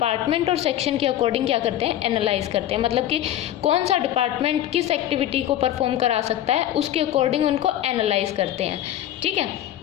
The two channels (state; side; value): quieter; right; 12.3 dB